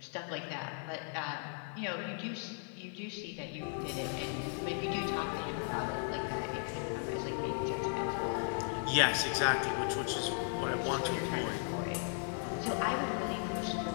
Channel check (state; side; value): silent; right; 54 dB below the other